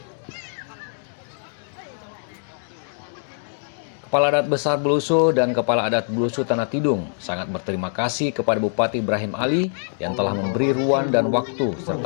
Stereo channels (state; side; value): silent; right; digital silence